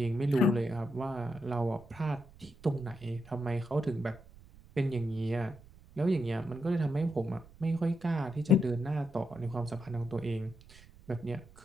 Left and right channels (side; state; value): right; noise; rumble, 22 dB below the sound